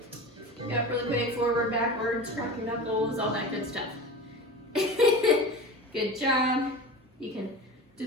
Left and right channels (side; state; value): both; normal; correlation 0.32